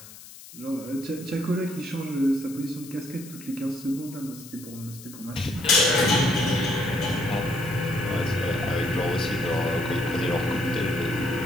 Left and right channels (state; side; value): noise; left; hiss, 17 dB below the sound